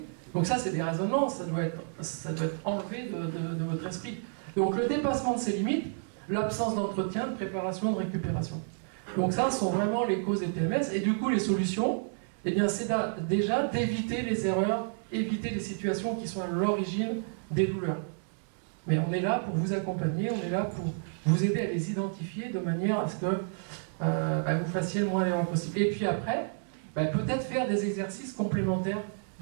Donc ça, c'est des raisonnements, ça doit être enlevé de votre esprit. Donc le dépassement de ses limites, l'absence d'entretien, de préparation, de récupération. Donc ça, sont vraiment les causes des TMS. Et du coup, les solutions, eh bien, c'est déjà d'éviter les erreurs, éviter les situations qui sont à l'origine des douleurs. Mais on est là pour vous accompagner, on est là pour vous aider à les identifier de manière à ce que vous fassiez le moins d'erreurs possible. Et puis après, peut-être faire des exercices complémentaires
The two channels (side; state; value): left; silent; digital silence